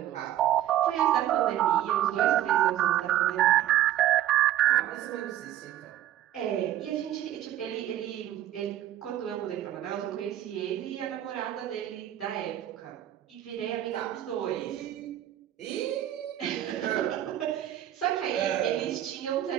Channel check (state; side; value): quieter; left; 12.4 dB